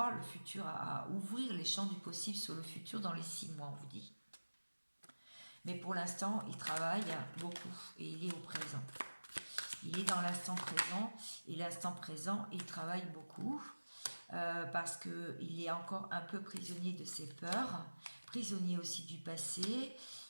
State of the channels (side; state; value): both; inverted; correlation -1.00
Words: le futur, à ouvrir les champs du possible sur le futur dans les 6 mois, on vous dit. Mais pour l'instant, il travaille beaucoup et il est au présent. Il est dans l'instant présent et l'instant présent, il travaille beaucoup parce qu'il est encore un peu prisonnier de ses peurs, prisonnier aussi du passé.